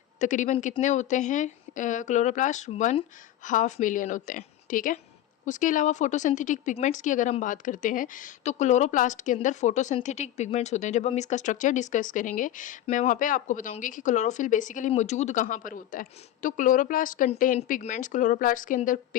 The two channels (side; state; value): right; quieter; 12.7 dB